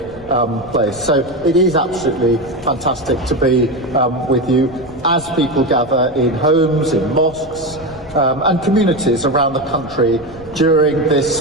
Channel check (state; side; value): noise; left; rumble, 21 dB below the sound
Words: place. So it is absolutely fantastic to be with you as people gather in homes, in mosques and communities around the country during this